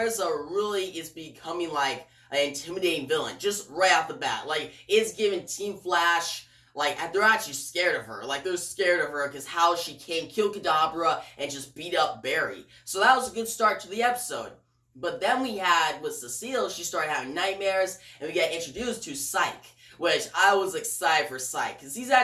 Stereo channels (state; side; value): identical; both; correlation 1.00